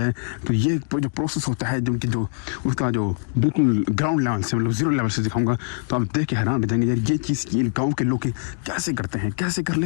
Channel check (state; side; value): silent; right; digital silence